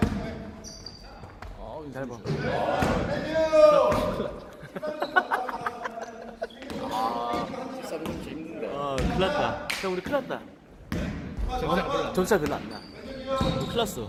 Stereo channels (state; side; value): identical; both; correlation 1.00